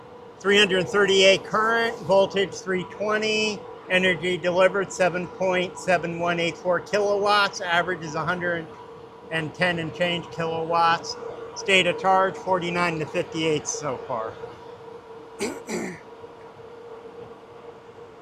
.338 current, voltage 320, energy delivered 7.7184 kilowatts, average is 110 and change kilowatts. State of charge 49 to 58 so far.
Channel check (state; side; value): identical; both; correlation 1.00